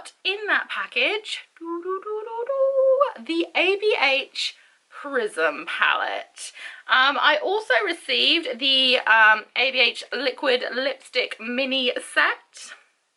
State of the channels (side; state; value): both; identical; correlation 1.00